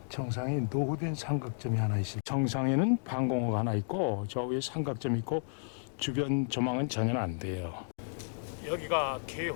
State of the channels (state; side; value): silent; right; digital silence